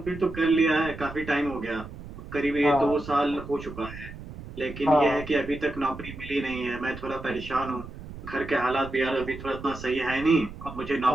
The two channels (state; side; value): noise; right; rumble, 13 dB below the sound